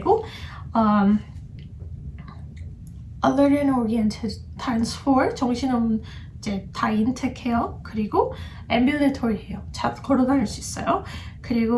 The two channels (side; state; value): both; identical; correlation 1.00